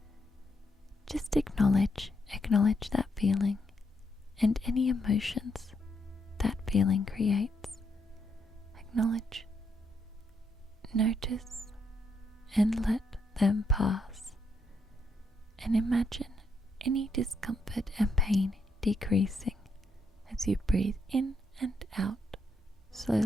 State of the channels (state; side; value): normal; both; correlation 0.78